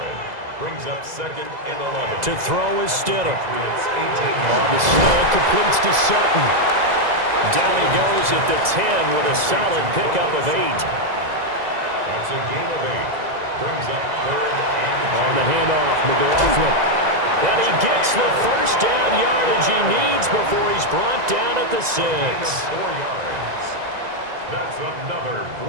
Brings up 2nd and 11. To throw is Stidham. Patriots 18 On the slant, completes to Sutton. Down he goes at the 10 with a solid pickup of 8. That's a gain of 8. Brings up 3rd and 2. On the handoff, McLaughlin. And he gets the first down yardage he needs before he's brought down at the 6. 4 yards. That's another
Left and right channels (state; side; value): late; left; 2.0 ms